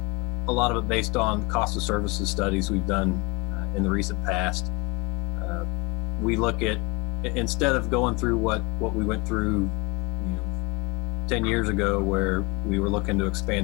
A lot of it based on cost of services studies we've done in the recent past. We look at, instead of going through what we went through 10 years ago, where we were looking to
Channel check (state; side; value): quieter; right; 27.5 dB